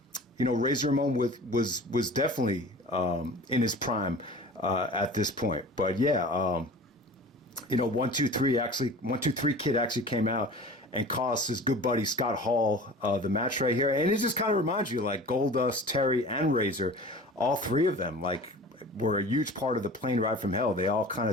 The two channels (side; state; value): both; normal; correlation 0.39